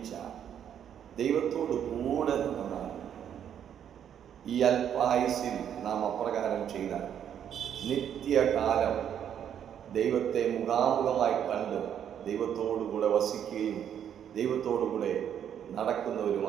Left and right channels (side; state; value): left; quieter; 9.2 dB